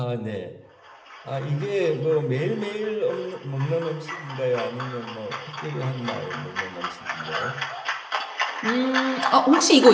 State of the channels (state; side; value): identical; both; correlation 1.00